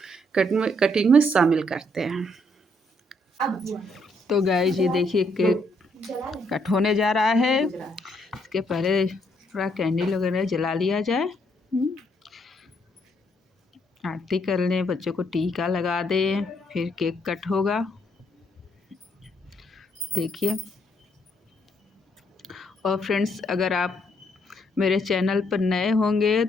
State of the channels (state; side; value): normal; both; correlation 0.72